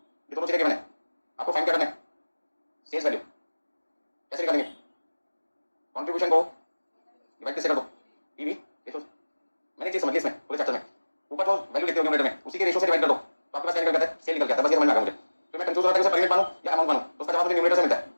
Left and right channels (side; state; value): both; inverted; correlation -1.00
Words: दोनों चीजें गिवन है, आपको फाइंड क्या करना है, सेल्स वैल्यू। कैसे निकालेंगे, कंट्रीब्यूशन को डिवाइड किससे कर दो, पीवी रेशो से। मैंने एक चीज समझ ली इसमें पूरे चैप्टर में, ऊपर जो वैल्यू लिखते हो न्यूमरेटर में उसी के रेशो से डिवाइड कर दो, तो आपके पास क्या निकल जाता है, सेल निकल जाता है, बस ये समझ में आ गया मुझे। तो मैं कंफ्यूज हो रहा था कि उसे पर यूनिट मानूं या अमाउंट मानूं, तो उसका जवाब मुझे न्यूमरेटर से मिलता है,